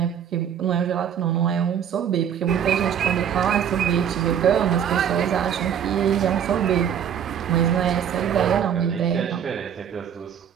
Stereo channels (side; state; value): left; quieter; 8.8 dB